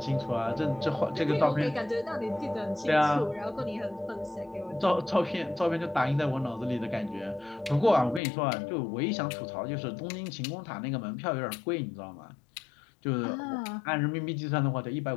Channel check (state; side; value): drops out; right; at 8.2 s